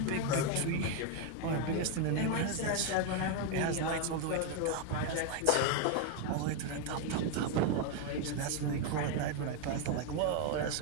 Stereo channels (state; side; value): different; both; correlation 0.01